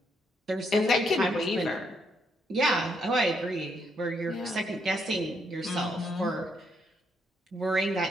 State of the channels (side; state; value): both; normal; correlation 0.75